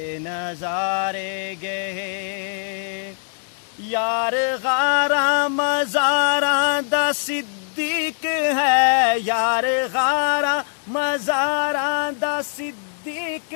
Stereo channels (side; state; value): right; silent; digital silence